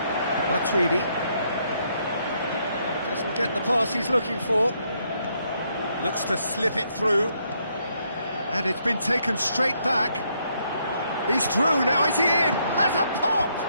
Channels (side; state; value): both; inverted; correlation -0.74